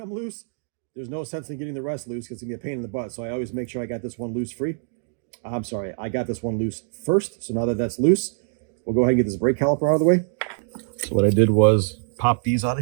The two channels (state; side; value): silent; left; digital silence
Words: loose, there's no sense in getting the rest loose because it's going to be a pain in the butt. So I always make sure I got this one loose free. I'm sorry, I got this one loose first. So now that that's loose, we'll go ahead and get this brake caliper out of the way. So what I did was pop these out